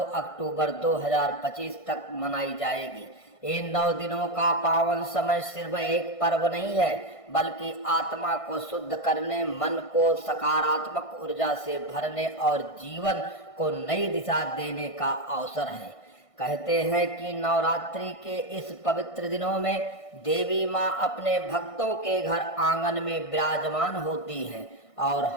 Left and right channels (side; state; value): right; late; 1.6 ms